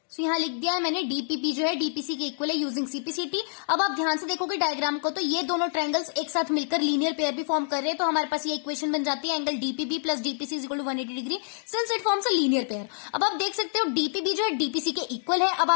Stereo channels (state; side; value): silent; right; digital silence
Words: तो यहाँ लिख दिया है मैंने डीपीपी जो है डीपीसी के इक्वल है यूजिंग सीपीसीटी. अब आप ध्यान से देखोगे डायग्राम को तो ये दोनों ट्रायंगल्स एक साथ मिलकर लीनियर पेयर भी फॉर्म कर रहे हैं. तो हमारे पास ये इक्वेशन बन जाती है angle DPB plus DPC is equal to 180 degree since it forms a linear pair. अब आप देख सकते हो डीपीबी जो है डीपीसी के इक्वल है. अब